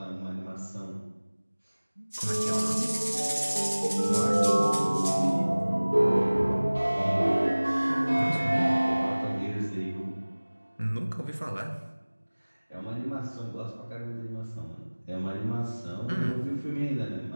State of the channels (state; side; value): inverted; both; correlation -1.00